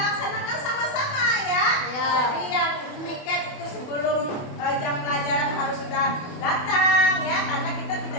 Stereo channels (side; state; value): right; late; 28 ms